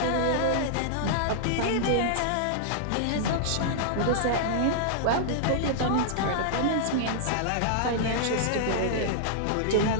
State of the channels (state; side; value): different; both; correlation -0.01